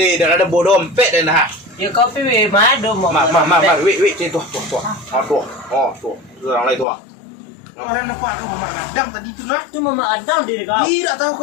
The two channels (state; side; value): drops out; right; at 6.9 s